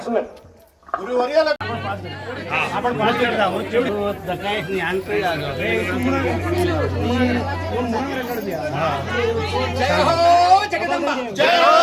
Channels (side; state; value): both; identical; correlation 1.00